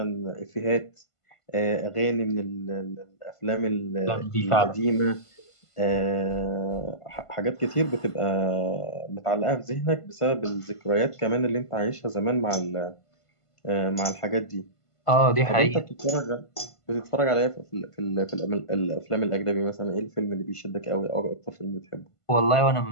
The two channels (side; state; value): right; late; 1.5 ms